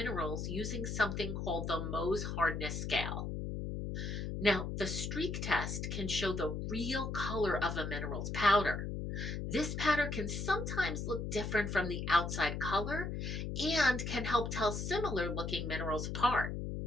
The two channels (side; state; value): left; noise; hum, 3 dB below the sound